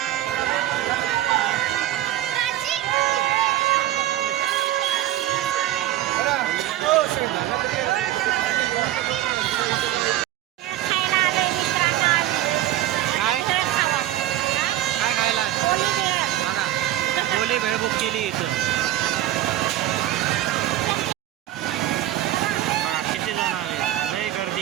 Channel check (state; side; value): quieter; left; 13.8 dB